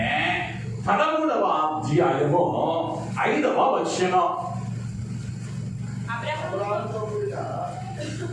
13వ అధ్యాయము 5వ వచనం.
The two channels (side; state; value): both; identical; correlation 1.00